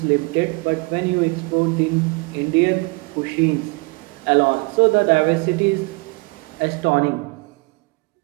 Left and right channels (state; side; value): quieter; left; 27.9 dB